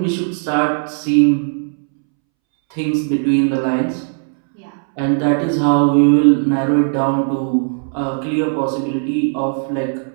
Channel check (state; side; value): silent; left; 67 dB below the other